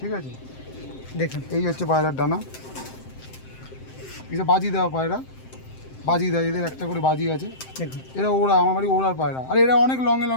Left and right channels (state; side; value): late; right; 7.7 ms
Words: ঠিক আছে? দেখুন এই হচ্ছে পায়রার ডানা, এটা বাজি দেওয়া পায়রা, বাজি দেয়, এদের একটা করে বাজি আছে। দেখুন, এরা ওড়া, আমার বাড়ি ওড়ার পায়রা। আর এরা অনেক লঙে